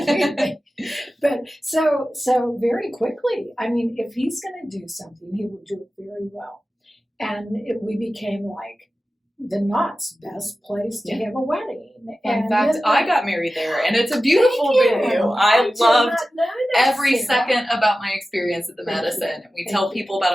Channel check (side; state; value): both; normal; correlation 0.94